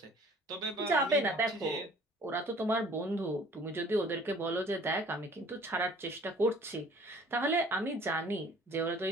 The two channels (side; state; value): both; normal; correlation 0.52